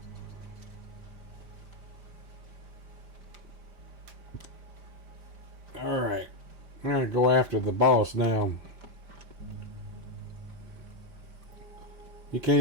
Alright. I'm gonna go after the boss now. You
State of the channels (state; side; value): late; left; 5.0 ms